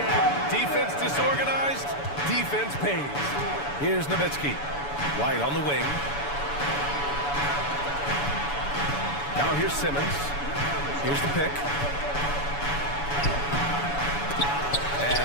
Defense disorganized. Defense pays. Here's Nowitzki. White on the wing. Now here's Simmons. Here's the pick.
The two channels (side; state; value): right; late; 7.0 ms